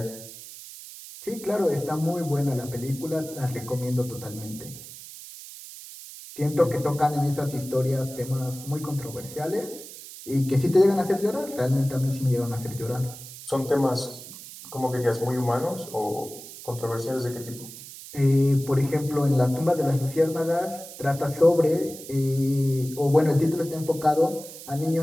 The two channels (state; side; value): noise; right; hiss, 14 dB below the sound